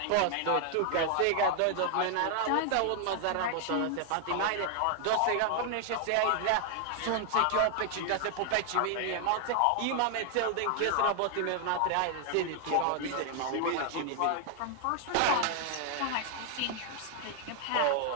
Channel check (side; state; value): both; different; correlation 0.00